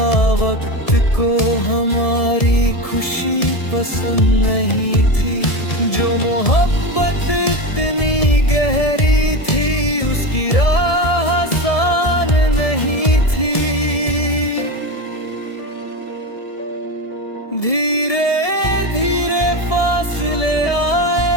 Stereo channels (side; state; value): right; late; 1.7 ms